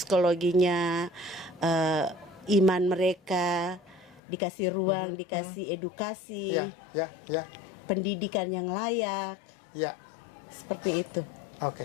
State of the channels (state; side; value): drops out; right; at 4.2 s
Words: iman mereka dikasih ruang, dikasih edukasi, pendidikan yang layak, seperti itu.